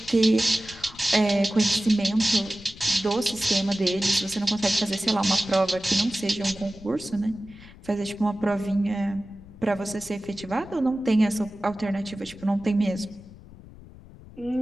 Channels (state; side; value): noise; left; rumble, 19 dB below the sound